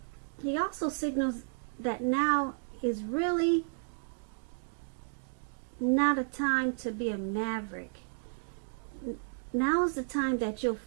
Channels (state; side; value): silent; left; digital silence